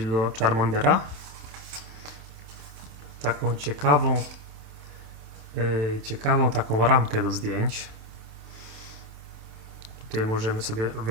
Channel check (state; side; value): late; left; 27 ms